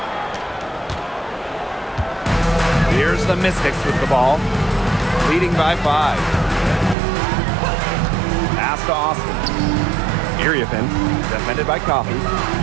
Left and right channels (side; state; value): left; drops out; at 7.0 s